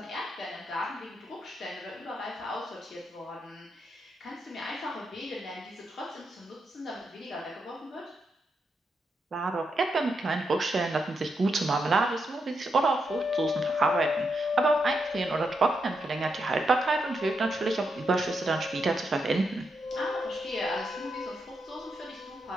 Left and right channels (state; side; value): normal; both; correlation 0.83